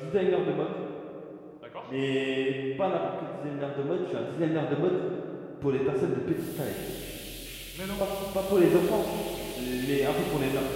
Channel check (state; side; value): identical; both; correlation 1.00